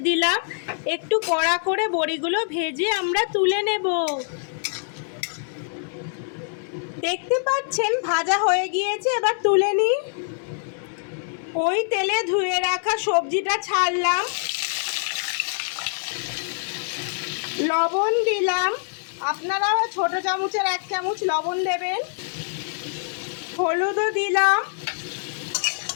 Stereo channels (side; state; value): right; silent; 62 dB below the other